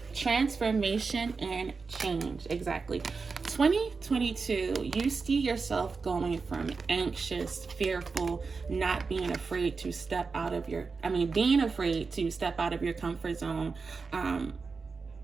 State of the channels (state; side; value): quieter; left; 4.6 dB